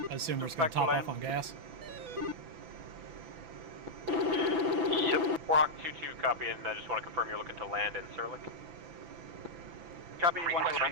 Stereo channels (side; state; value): left; late; 6.0 ms